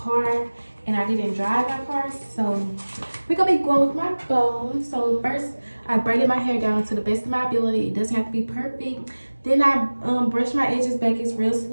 and I didn't drive my car. So we're gonna be going with my phone. So first I braided my hair down to the best of my ability. It doesn't have to be perfect. Then I brushed my edges back, it's real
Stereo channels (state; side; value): inverted; both; correlation -1.00